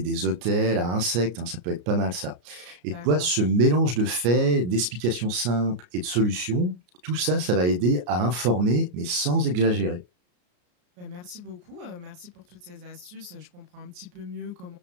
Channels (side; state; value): left; late; 34 ms